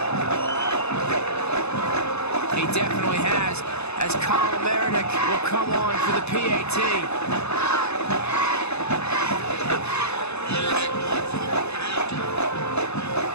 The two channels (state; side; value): late; right; 0.80 ms